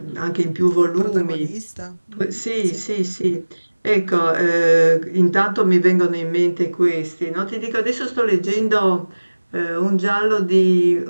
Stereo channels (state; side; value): inverted; both; correlation -1.00